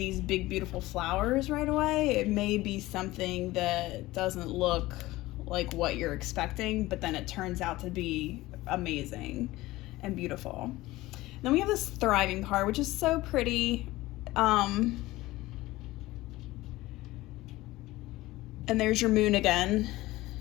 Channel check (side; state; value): right; quieter; 18.3 dB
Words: big beautiful flowers right away. It may be something that doesn't look like what you're expecting, but then it turns out to be amazing and beautiful. Then we have this thriving card, which is so pretty. And there's your moon again.